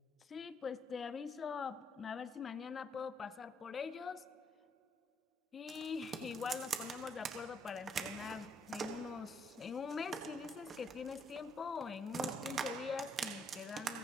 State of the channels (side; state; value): both; normal; correlation 0.72